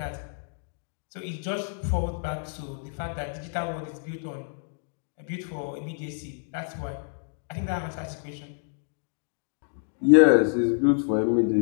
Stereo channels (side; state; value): right; silent; digital silence